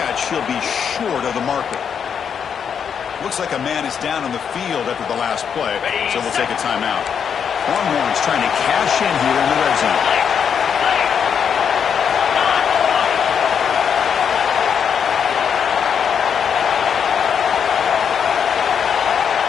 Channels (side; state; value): right; quieter; 7.4 dB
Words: He'll be short of the marker. Looks like a man is down on the field after the last play, so we'll take a timeout. Longhorns trying to cash in here in the red zone.